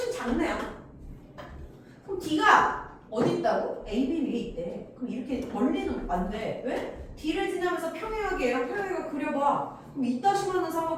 작네요. 그럼 D가 어디 있다고? AB 위에 있대. 그럼 이렇게 멀리는 안 돼. 왜? D를 지나면서 평행하게 얘랑 평행하게 그려봐. 그럼 이따시만한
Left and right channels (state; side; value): identical; both; correlation 1.00